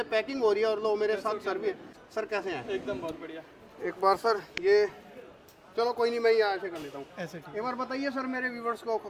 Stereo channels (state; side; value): identical; both; correlation 1.00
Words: पैकिंग हो रही है। और लो मेरे साथ सर भी। सर कैसे हैं? एकदम बहुत बढ़िया। एक बार सर ये, चलो कोई नहीं, मैं यहाँ ऐसे कर लेता हूँ। ऐसे ठीक। एक बार बताइए सर मेरे व्यूवर्स को